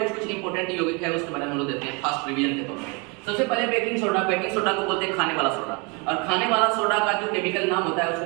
कुछ इंपॉर्टेंट यौगिक है उसके बारे में हम लोग देखते हैं फास्ट रिवीजन के तौर पर। सबसे पहले बेकिंग सोडा। बेकिंग सोडा को बोलते हैं खाने वाला सोडा, और खाने वाला सोडा का जो केमिकल नाम होता है उसको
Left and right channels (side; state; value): left; quieter; 31.0 dB